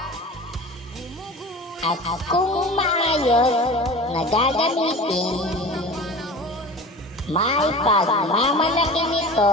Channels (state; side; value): normal; both; correlation 0.36